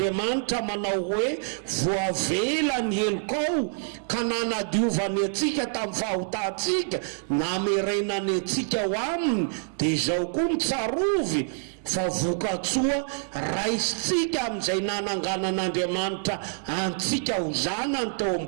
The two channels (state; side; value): silent; left; 61 dB below the other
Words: manao hoe voavela ny helokao ka nanadiovany atsika tamin'ny fahotantsika, namerenany atsika ho aminy, dia izao koa ny tsarovy fa vokatsoa raisitsika amin'izay nananganan'Andriamanitra antsika ho zanany teo amin'ny